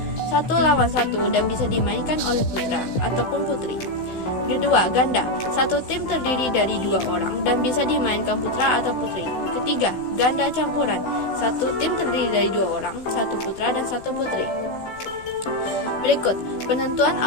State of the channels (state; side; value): late; right; 16 ms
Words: 1 lawan 1 dan bisa dimainkan oleh putra ataupun putri. Kedua, ganda, 1 tim terdiri dari 2 orang dan bisa dimainkan putra atau putri. Ketiga, ganda campuran, 1 tim terdiri dari 2 orang, 1 putra dan 1 putri. Berikut, penentuan